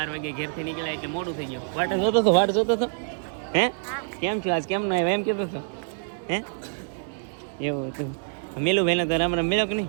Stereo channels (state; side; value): silent; left; 61 dB below the other